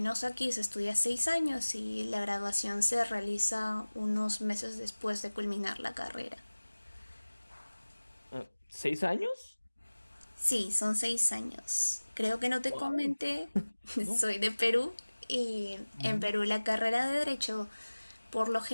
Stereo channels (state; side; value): inverted; both; correlation -1.00